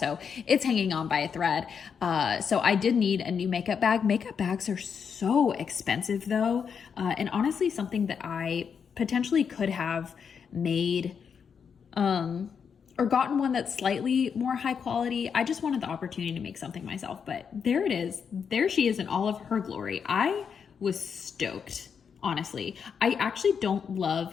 it's hanging on by a thread. So I did need a new makeup bag. Makeup bags are so expensive though. And honestly, something that I potentially could have made, or gotten one that's slightly more high quality. I just wanted the opportunity to make something myself, but there it is. There she is in all of her glory. I was stoked, honestly. I actually don't love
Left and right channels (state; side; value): quieter; right; 6.7 dB